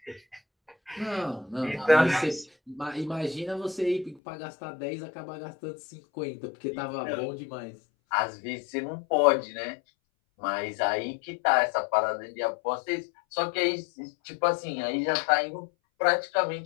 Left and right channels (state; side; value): drops out; right; at 4.2 s